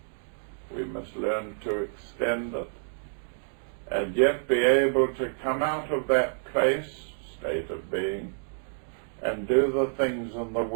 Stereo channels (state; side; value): silent; left; digital silence